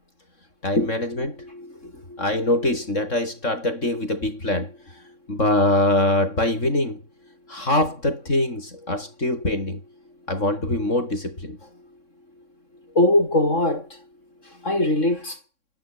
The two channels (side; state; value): right; late; 3.6 ms